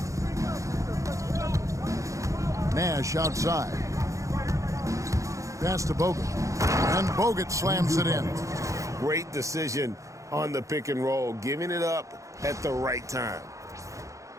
Nash outside. Pass to Bogut. And Bogut slams it in. Great decision on the pick and roll, giving it up at the right time.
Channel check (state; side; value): late; left; 0.15 ms